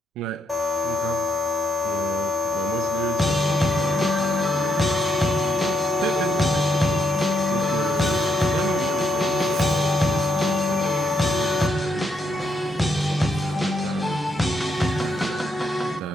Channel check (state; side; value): normal; both; correlation 0.78